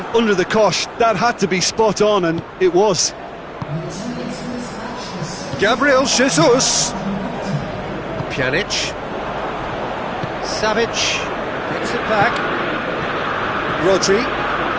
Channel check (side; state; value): both; identical; correlation 1.00